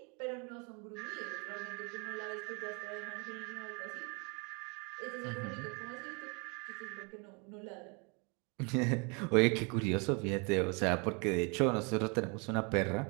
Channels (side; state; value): left; quieter; 31.8 dB